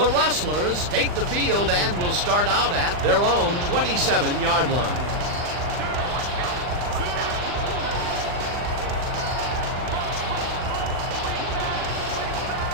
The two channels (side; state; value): left; late; 39 ms